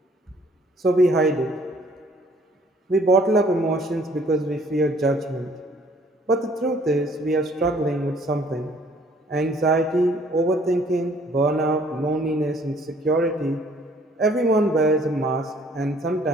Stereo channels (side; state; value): both; normal; correlation 0.59